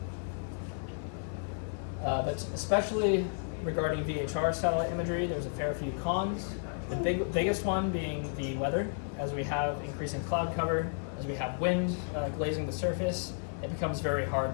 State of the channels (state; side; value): silent; right; 56 dB below the other